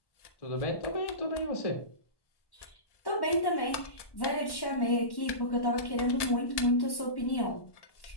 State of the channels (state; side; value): late; right; 1.1 ms